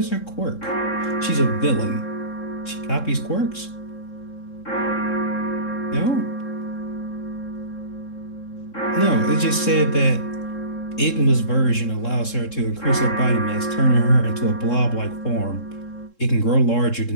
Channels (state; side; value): late; right; 3.7 ms